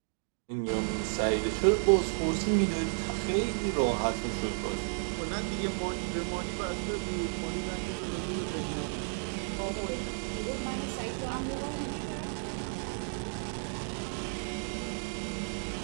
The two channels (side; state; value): left; silent; digital silence